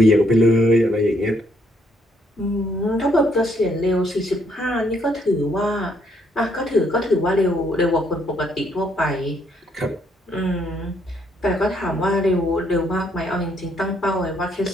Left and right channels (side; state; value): both; normal; correlation 0.71